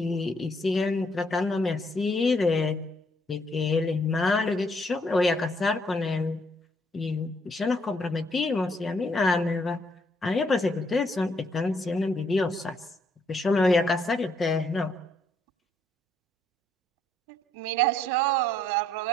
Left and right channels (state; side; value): normal; both; correlation 0.70